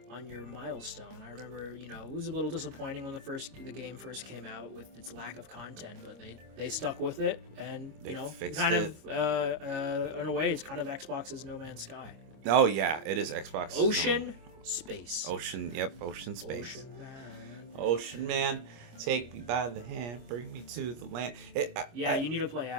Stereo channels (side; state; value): left; late; 25 ms